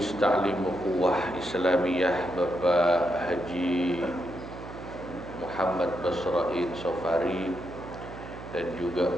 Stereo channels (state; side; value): noise; right; hum, 12 dB below the sound